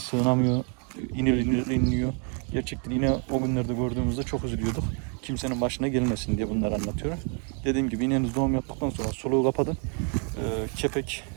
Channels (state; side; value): quieter; left; 39.7 dB